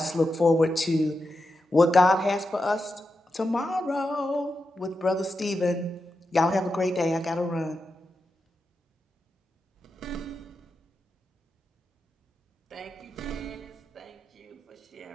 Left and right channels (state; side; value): normal; both; correlation 0.89